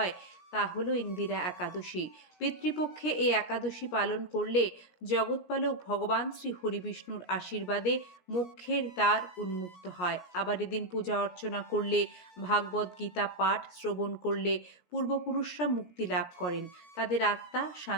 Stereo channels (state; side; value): late; right; 17 ms